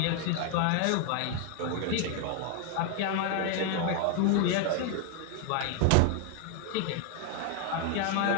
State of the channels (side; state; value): both; different; correlation 0.01